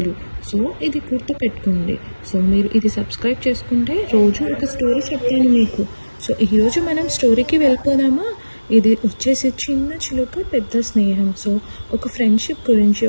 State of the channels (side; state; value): both; inverted; correlation -1.00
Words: సో ఇది గుర్తుపెట్టుకోండి. సో మీరు ఇది సబ్స్క్రైబ్ చేసుకుంటే రోజు ఒక స్టోరీ చెప్తాను మీకు. సో ఈరోజు మనం స్టోరీకి వెళ్ళిపోదామా? ఇది వచ్చేసి చిన్న చిలుక పెద్ద స్నేహం. సో ఒక ఫ్రెండ్షిప్ గురించి,